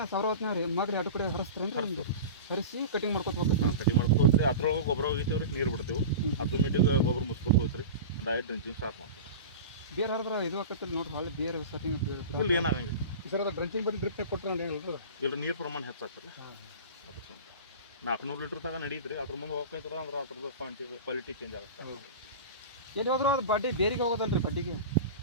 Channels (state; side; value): inverted; both; correlation -0.30